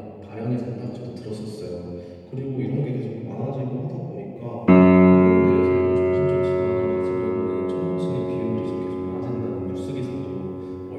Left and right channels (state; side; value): identical; both; correlation 1.00